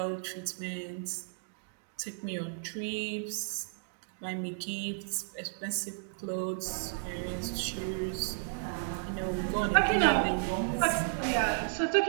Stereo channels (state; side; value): silent; left; digital silence